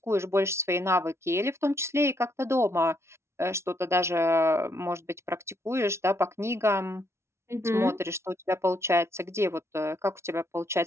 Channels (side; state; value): left; late; 0.13 ms